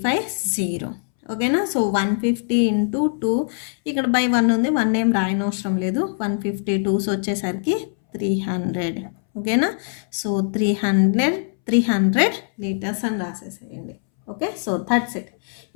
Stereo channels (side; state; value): right; silent; 63 dB below the other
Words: 0. ఓకేనా. సో 150 × 2, ఇక్కడ బై 1 ఉంది, 1 ఏం రాయనవసరం లేదు. 152 వచ్చేసరికి 300. ఓకేనా. సో 300 లీటర్స్ అని రాసేసేయండి. Okay, so that's it.